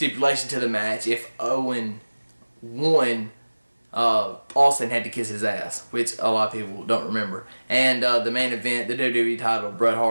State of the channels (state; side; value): inverted; both; correlation -1.00